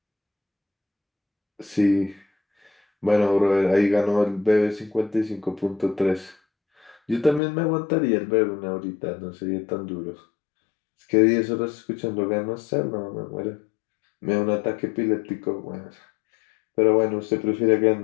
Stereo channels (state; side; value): drops out; right; at 7.4 s